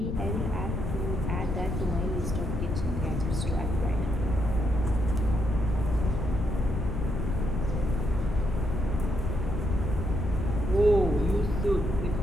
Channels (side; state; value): left; noise; rumble, 2 dB below the sound